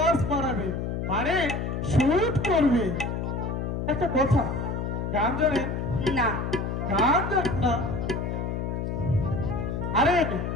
মারাবে মানে শুট করবে। একটা কথা, গান জানেন? না। গান জানেন না? আরে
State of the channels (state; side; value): noise; left; hum, 2 dB below the sound